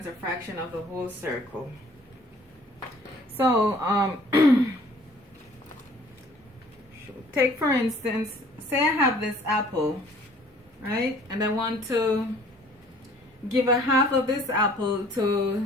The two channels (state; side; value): normal; both; correlation 0.55